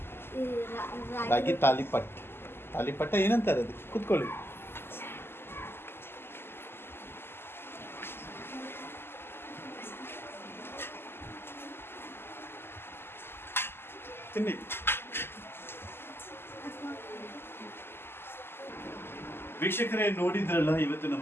ರಾಗಿ ತಾಲಿಪಟ್. ತಾಲಿಪಟ್ಟ ಏನಂತಾರೆ ಅದು? ಕೂತ್ಕೊಳ್ಳಿ. ತಿನ್ನಿ. ವೀಕ್ಷಕರೇ, ನೋಡಿದ್ರಲ್ಲ ಇವತ್ತು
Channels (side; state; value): right; late; 0.11 ms